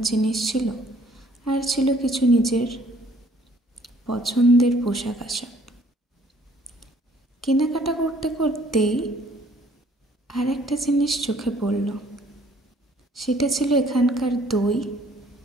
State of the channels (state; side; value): normal; both; correlation 0.59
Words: জিনিস ছিল, আর ছিল কিছু নিজের পছন্দের পোশাক আশাক। কেনাকাটা করতে করতেই আর একটা জিনিস চোখে পড়ল। সেটা ছিল এখানকার দই